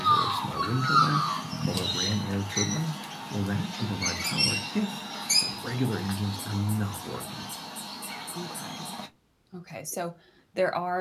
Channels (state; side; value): identical; both; correlation 1.00